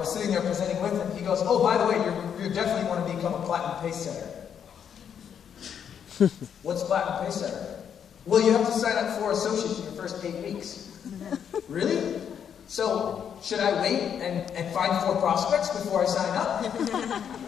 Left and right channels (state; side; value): quieter; right; 8.2 dB